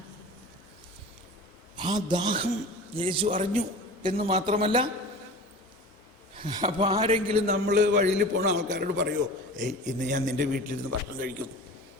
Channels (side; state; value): both; normal; correlation 0.36